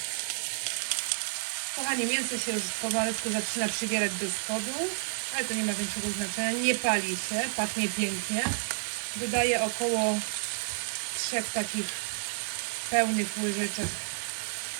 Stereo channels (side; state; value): left; silent; digital silence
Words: Kochani, mięso się już pomalutku zaczyna przybierać do spodu, ale to nie ma większego znaczenia. Nie pali się, pachnie pięknie. Dodaję około 3 takich pełnych łyżeczek